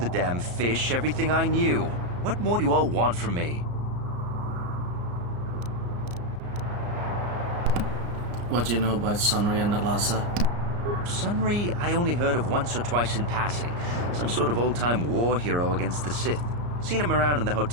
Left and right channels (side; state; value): left; late; 34 ms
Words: damn fish everything I knew. What more do you all want from me? What do you know about Sunry and Alasa? Sunry, I only heard of once or twice in passing. Some sort of old-time war hero against the Sith. Seen him around in the